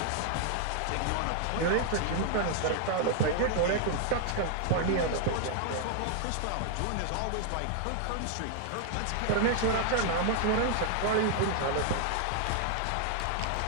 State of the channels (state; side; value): different; both; correlation 0.00